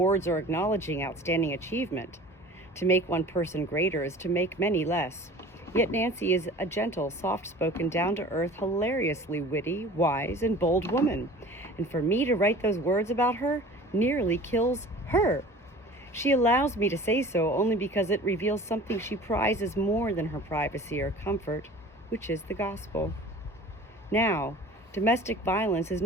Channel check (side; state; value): both; normal; correlation 0.43